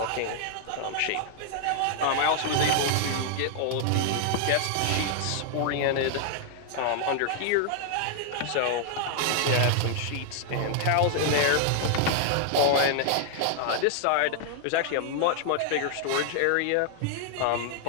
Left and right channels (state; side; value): different; both; correlation 0.00